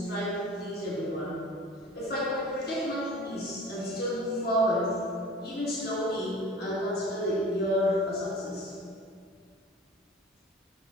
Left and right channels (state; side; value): normal; both; correlation 0.41